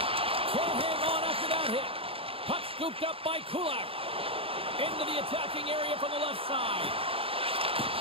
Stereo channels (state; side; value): late; left; 0.27 ms